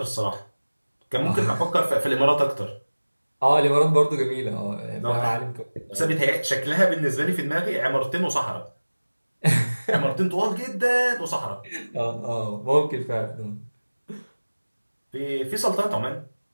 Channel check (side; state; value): both; inverted; correlation -1.00